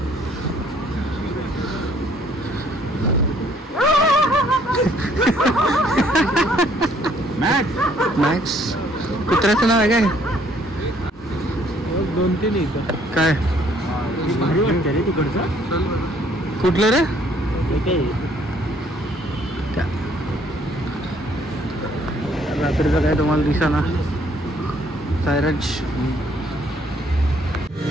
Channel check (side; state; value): both; normal; correlation 0.63